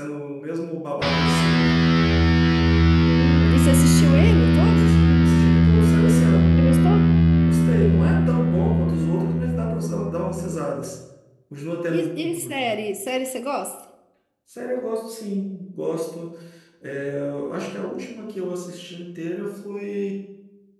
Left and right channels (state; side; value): identical; both; correlation 1.00